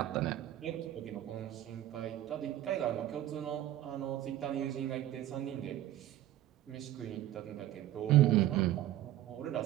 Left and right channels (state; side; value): quieter; left; 13.4 dB